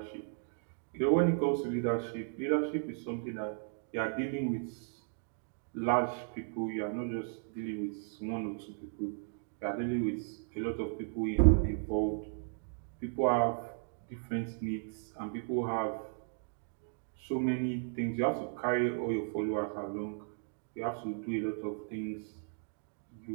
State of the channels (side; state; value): left; silent; digital silence